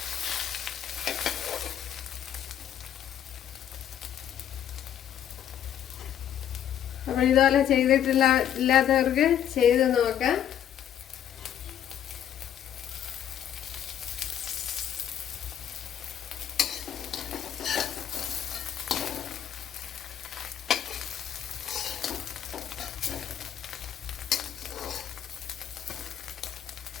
അപ്പോൾ ഇതുപോലെ ഇല്ലാത്തവർക്ക് ചെയ്ത് നോക്കാം.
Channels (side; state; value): right; quieter; 9.9 dB